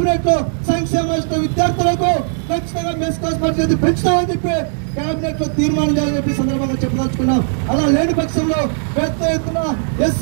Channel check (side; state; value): left; silent; digital silence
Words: లో సంక్షేమ విద్యార్థులకు ఖచ్చితంగా మెస్ కాస్ట్ పరిస్థితి పెంచుతామని చెప్పి కేబినెట్ లో తీర్మానం చేయాలని చెప్పి సందర్భంగా చెప్పదలుచుకున్నాం. అలా లేని పక్షంలో పెద్ద ఎత్తున